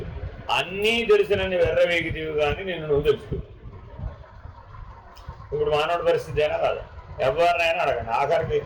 అన్నీ తెలిసినన్ని వెర్రవేగితివి కానీ నిన్ను నువ్వు తెలుసుకో. ఇప్పుడు మానవుడి పరిస్థితి అయినా కాదు, ఎవరినైనా అడగండి. ఆఖరికి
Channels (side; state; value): both; identical; correlation 1.00